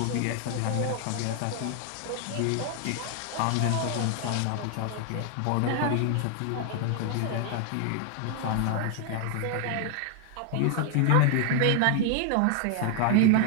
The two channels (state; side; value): different; both; correlation 0.00